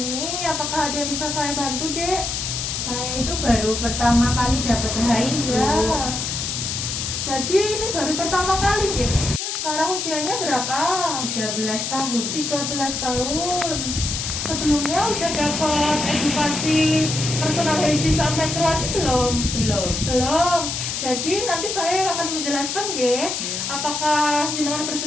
Apakah ada yang bisa saya bantu, Dek? Saya itu baru pertama kali dapat HI, Bu. Ya. Jadi ini baru pertama kali, Dek. Sekarang usianya berapa? 13 tahun. 13 tahun. Sebelumnya udah dapat edukasi personal hygiene saat menstruasi belum? Belum. Jadi nanti saya akan menjelaskan, ya. Apakah jenengan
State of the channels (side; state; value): left; noise; hiss, 3 dB below the sound